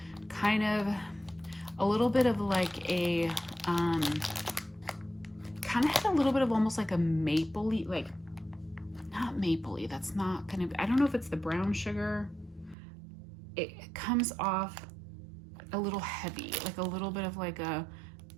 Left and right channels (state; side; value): drops out; left; at 12.8 s